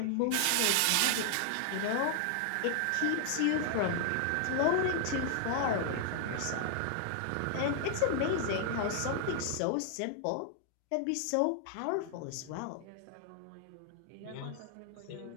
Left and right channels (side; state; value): both; different; correlation -0.01